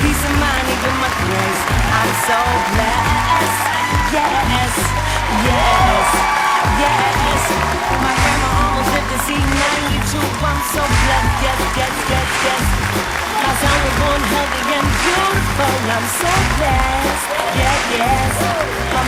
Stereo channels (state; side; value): identical; both; correlation 1.00